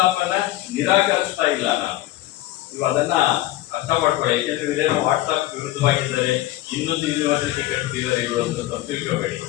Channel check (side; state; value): right; quieter; 16.0 dB